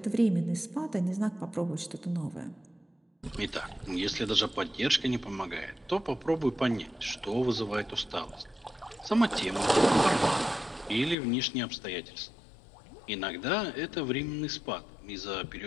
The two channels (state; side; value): drops out; right; at 11.2 s